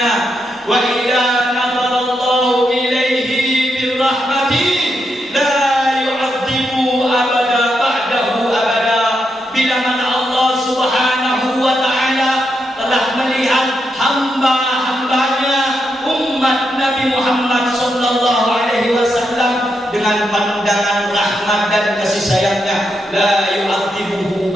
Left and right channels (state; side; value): normal; both; correlation 0.83